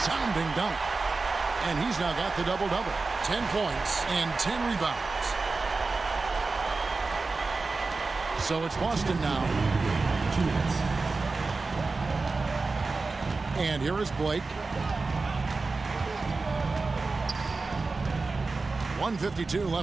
dunk. And he's now got the double-double. 10 points and 10 rebounds. So it's Boston now. 2 minutes. And here is Blake. 1:52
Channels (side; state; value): left; quieter; 3.9 dB